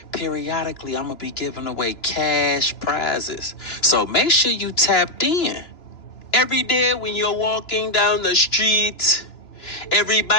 periodically I'm gonna be giving away cash prizes. So make sure you tapped in. Every day when you're walking down the street,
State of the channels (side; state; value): right; late; 2.9 ms